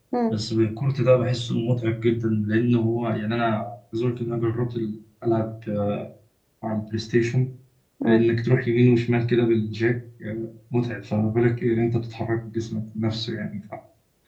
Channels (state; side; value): identical; both; correlation 1.00